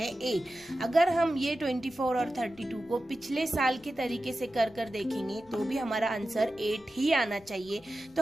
8। अगर हम ये 24 और 32 को पिछले साल के तरीके से कर देखेंगे तो भी हमारा आंसर 8 ही आना चाहिए। तो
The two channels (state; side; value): noise; left; rumble, 27 dB below the sound